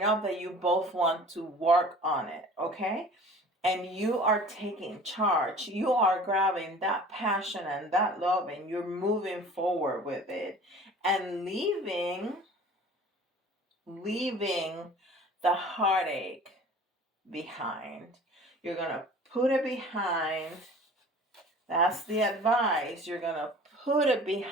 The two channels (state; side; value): normal; both; correlation 0.44